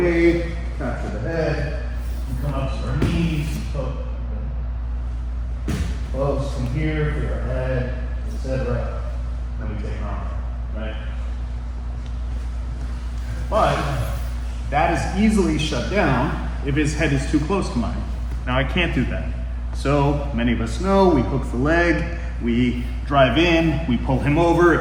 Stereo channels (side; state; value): both; identical; correlation 1.00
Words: capture the head, we come up to our knees, close from here for your head, etc. Then we take an arm, right? But that is easily shut down if his head is too close to mine. Now I can't do that. So many of us know we hook the leg, we drive in, we pull him over,